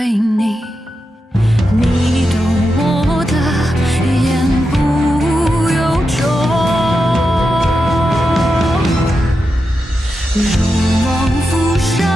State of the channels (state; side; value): normal; both; correlation 0.88